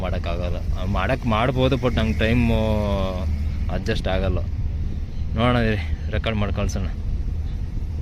ಮಾಡೋಕ್ಕಾಗಲ್ಲ. ಮಾಡ್ಬೋದು, ಬಟ್ ನಂಗೆ ಟೈಮು ಅಡ್ಜಸ್ಟ್ ಆಗಲ್ಲ. ನೋಡೋಣ, ರೆಕಾರ್ಡ್ ಮಾಡಿ ಕಳ್ಸೋಣ.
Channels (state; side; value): identical; both; correlation 1.00